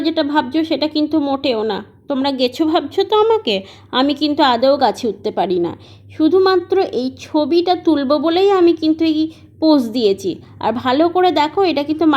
যেটা ভাবছো সেটা কিন্তু মোটেও না। তোমরা গেছো ভাবছো তো আমাকে, আমি কিন্তু আদৌ গাছে উঠতে পারি না। শুধুমাত্র এই ছবিটা তুলবো বলেই আমি কিন্তু এই পোজ দিয়েছি। আর ভালো করে দেখো, এটা কিন্তু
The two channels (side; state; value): both; identical; correlation 1.00